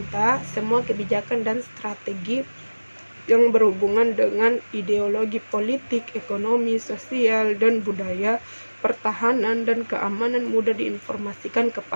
semua kebijakan dan strategi yang berhubungan dengan ideologi politik, ekonomi, sosial, dan budaya, pertahanan, dan keamanan mudah diinformasikan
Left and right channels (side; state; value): both; inverted; correlation -1.00